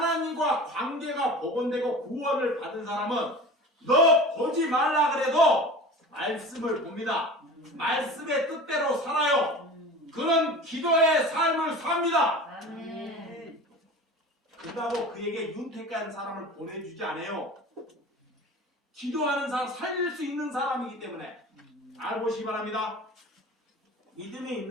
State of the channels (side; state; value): both; normal; correlation 0.36